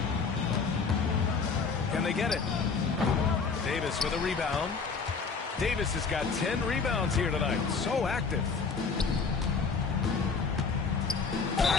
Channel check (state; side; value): quieter; right; 5.0 dB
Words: Can they get it? Davis with a rebound. Davis has got 10 rebounds here tonight. So active.